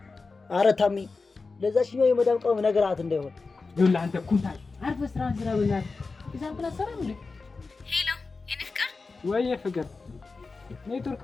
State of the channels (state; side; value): quieter; right; 4.1 dB